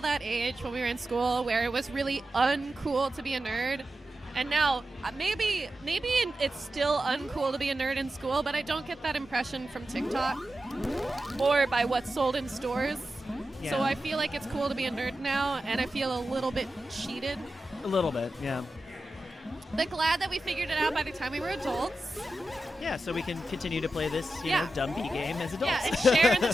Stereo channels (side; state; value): both; normal; correlation 0.91